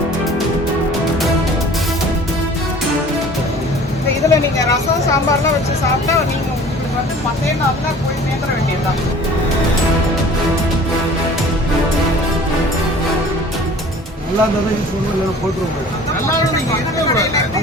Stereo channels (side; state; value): both; normal; correlation 0.47